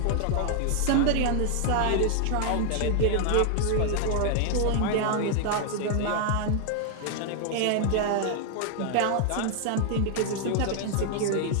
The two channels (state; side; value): different; both; correlation 0.00